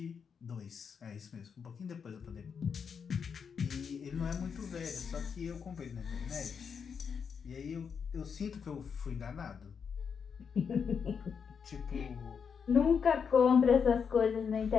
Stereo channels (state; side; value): quieter; right; 6.5 dB